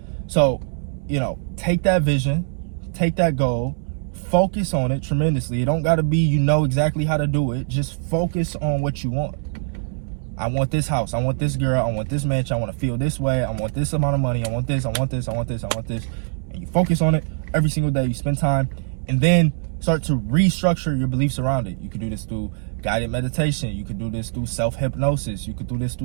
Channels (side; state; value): left; silent; digital silence